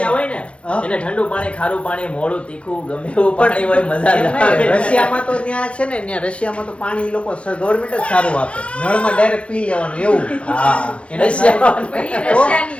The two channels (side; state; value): right; late; 0.061 ms